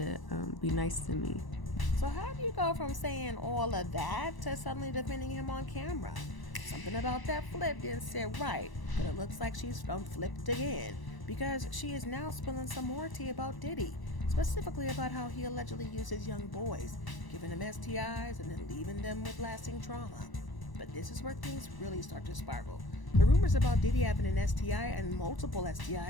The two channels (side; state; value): right; late; 1.0 ms